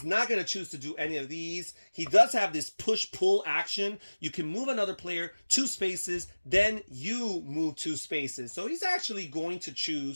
not going to choose to do any of these. He does have this push-pull action. You can move another player 2 spaces, then you move 2 spaces. So he's actually going to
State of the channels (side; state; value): both; inverted; correlation -1.00